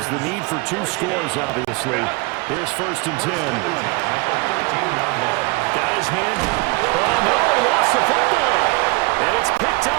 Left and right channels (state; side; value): quieter; left; 26.5 dB